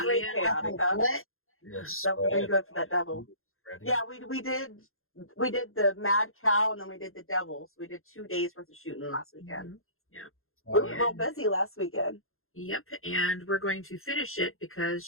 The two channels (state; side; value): late; right; 0.61 ms